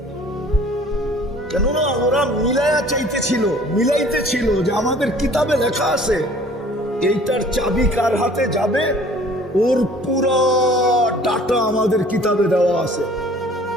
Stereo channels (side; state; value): both; normal; correlation 0.52